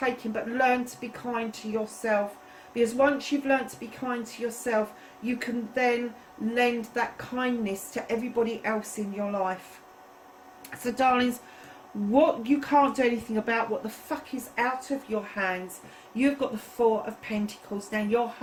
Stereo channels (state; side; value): identical; both; correlation 1.00